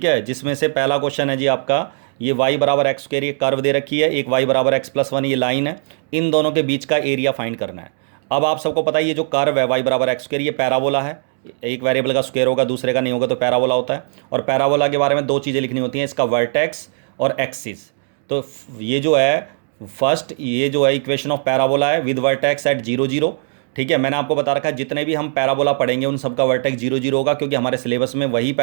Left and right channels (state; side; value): silent; left; digital silence